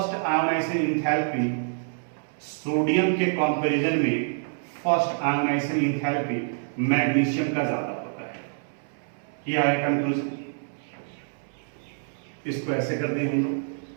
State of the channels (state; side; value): silent; left; 60 dB below the other